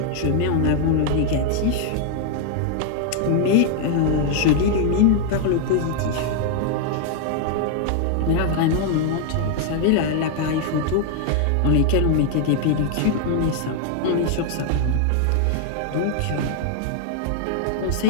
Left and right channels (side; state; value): both; different; correlation 0.00